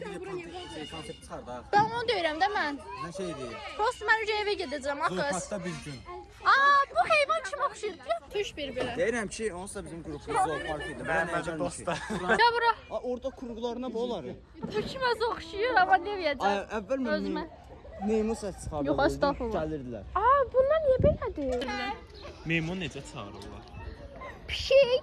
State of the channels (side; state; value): both; identical; correlation 1.00